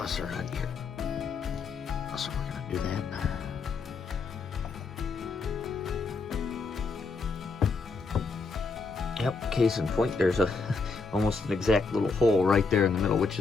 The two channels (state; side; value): quieter; right; 4.2 dB